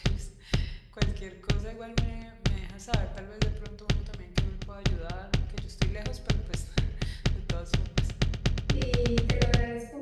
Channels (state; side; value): identical; both; correlation 1.00